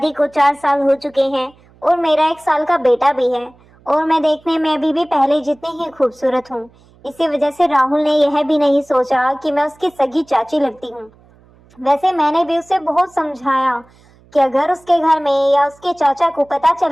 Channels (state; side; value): noise; right; hum, 29 dB below the sound